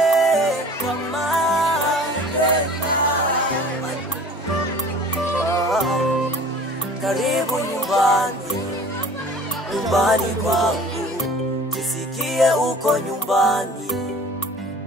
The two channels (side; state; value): both; normal; correlation 0.45